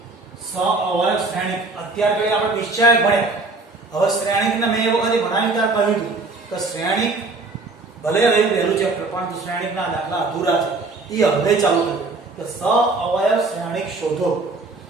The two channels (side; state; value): left; quieter; 3.5 dB